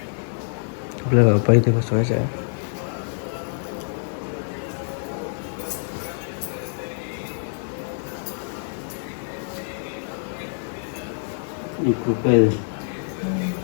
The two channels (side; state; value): right; silent; digital silence